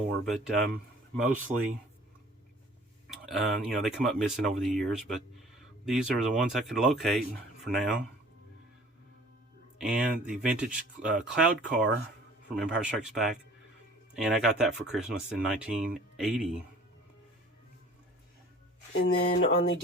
but mostly, they come up missing over the years, but these are the ones I could locate for now. And the vintage Cloud Car from Empire Strikes Back, and I got that for Christmas in 1980. And then on the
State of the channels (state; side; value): normal; both; correlation 0.50